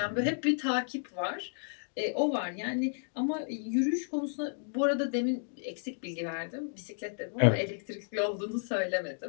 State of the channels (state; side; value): silent; right; digital silence